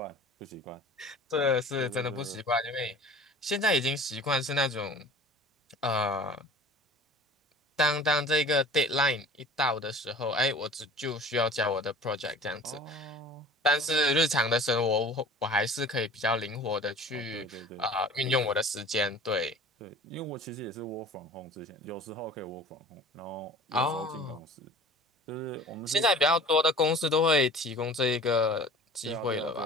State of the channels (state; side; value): normal; both; correlation 0.43